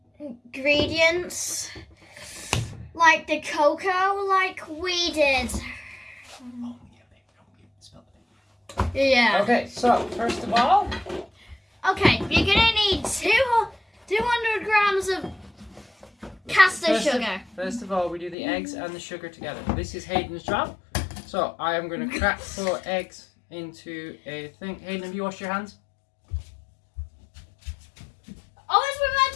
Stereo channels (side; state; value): right; drops out; at 18.4 s